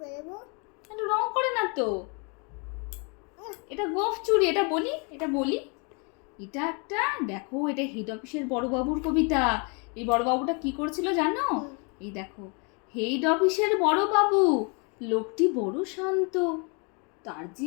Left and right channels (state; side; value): quieter; right; 34.2 dB